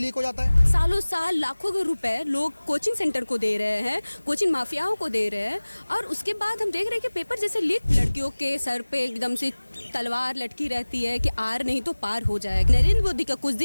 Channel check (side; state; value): both; inverted; correlation -1.00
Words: हो जाता है। सालों साल लाखों रुपए लोग कोचिंग सेंटर को दे रहे हैं, कोचिंग माफियाओं को दे रहे हैं, और उसके बाद हम देख रहे हैं कि पेपर जैसे लीक, लड़कियों के सर पे एकदम से तलवार लटकी रहती है कि आर नहीं तो पार हो जाएगा। नरेंद्र मोदी का कुछ